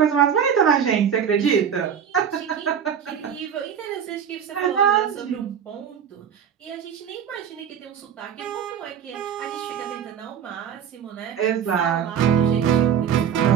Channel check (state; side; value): quieter; left; 8.2 dB